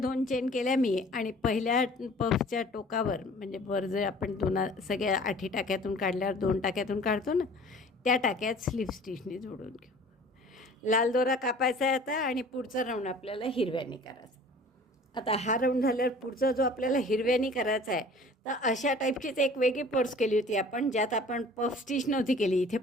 चेन केल्या मी, आणि पहिल्या पफच्या टोकावर म्हणजे वर जे आपण सगळ्या 8 टाक्यातून काढल्यावर 2 टाक्यातून काढतो ना, त्या टाक्यात स्लिप स्टिचने जोडून घेऊ. लाल दोरा कापायचा आहे आता आणि पुढचा राऊंड आपल्याला हिरव्याने करायचा. आता हा राऊंड झाल्यावर पुढचा जो आपल्याला हिरव्यानी करायचा आहे, तर अशा टाईपचीच एक वेगळी पर्स केली होती आपण, ज्यात आपण पफ स्टिच नव्हती केली. इथे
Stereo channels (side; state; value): both; normal; correlation 0.48